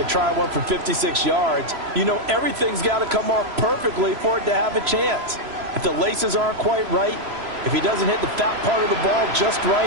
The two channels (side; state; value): left; late; 3.0 ms